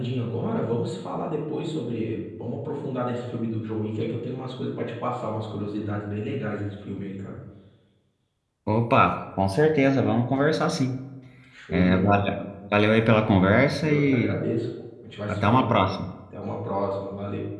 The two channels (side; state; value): both; identical; correlation 1.00